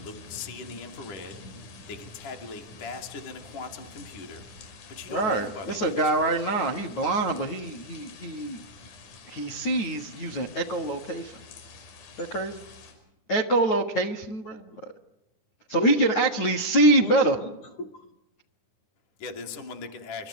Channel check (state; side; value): late; right; 9.3 ms